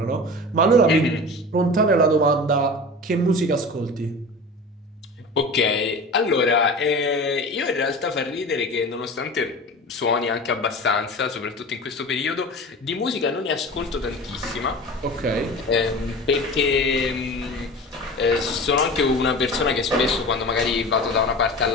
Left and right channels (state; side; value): normal; both; correlation 0.34